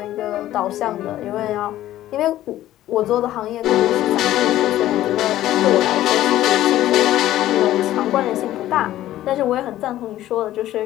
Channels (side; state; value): right; quieter; 13.9 dB